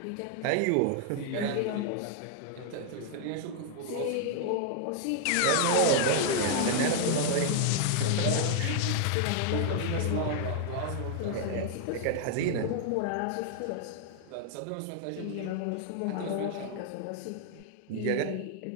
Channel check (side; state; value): both; different; correlation 0.00